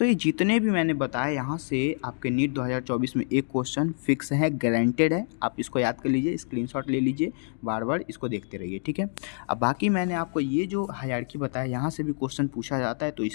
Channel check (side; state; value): right; silent; digital silence